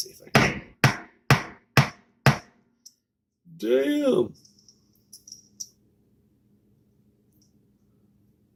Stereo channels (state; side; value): identical; both; correlation 1.00